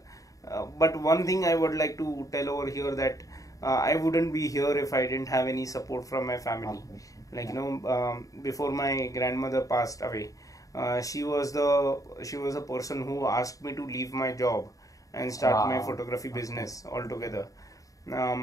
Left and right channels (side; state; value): right; late; 0.16 ms